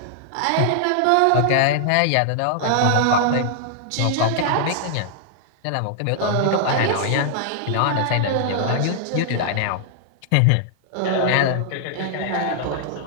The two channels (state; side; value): different; both; correlation -0.01